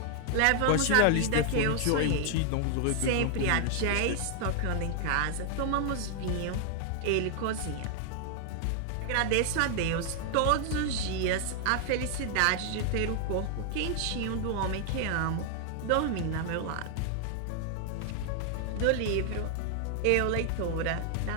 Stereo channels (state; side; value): different; both; correlation 0.00